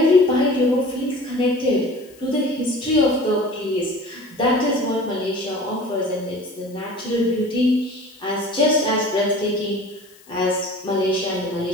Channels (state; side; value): noise; left; hiss, 27 dB below the sound